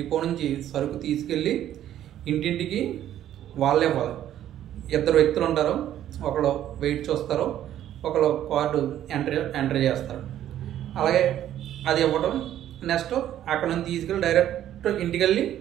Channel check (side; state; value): left; quieter; 11.7 dB